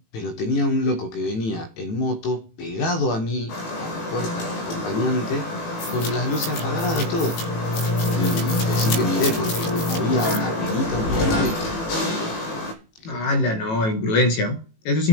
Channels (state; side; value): late; right; 18 ms